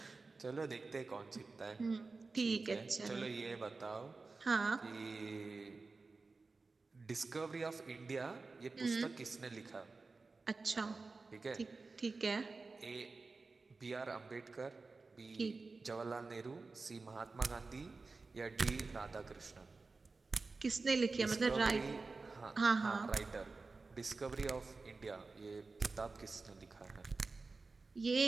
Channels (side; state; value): left; quieter; 3.9 dB